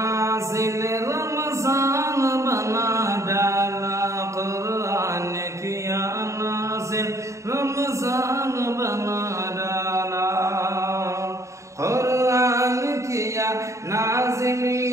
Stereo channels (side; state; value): left; late; 0.14 ms